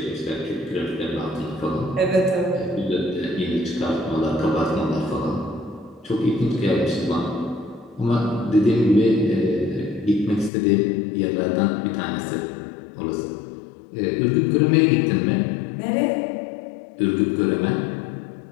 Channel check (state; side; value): drops out; right; at 10.5 s